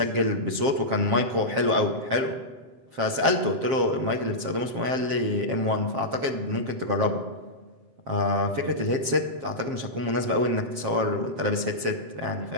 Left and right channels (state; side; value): late; left; 7.5 ms